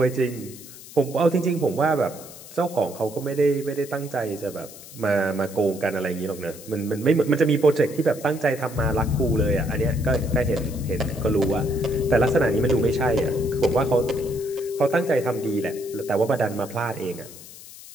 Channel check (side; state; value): left; noise; hiss, 17 dB below the sound